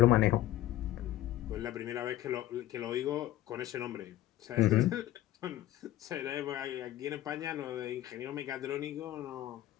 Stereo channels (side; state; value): right; quieter; 14.3 dB